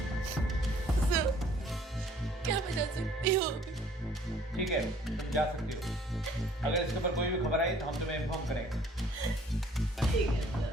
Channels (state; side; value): normal; both; correlation 0.57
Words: सर, क्या मैं जा सकती हूँ? ठीक है, तुम जा सकती हो। अगर इसके ऊपर कोई भी खबर आई तो हम तुम्हें इन्फॉर्म करेंगे। ठीक है सर।